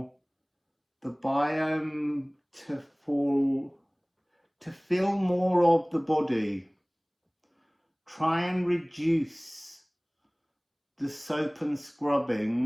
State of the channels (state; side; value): identical; both; correlation 1.00